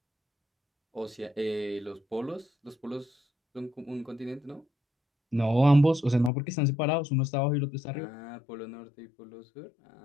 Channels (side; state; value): right; drops out; at 6.3 s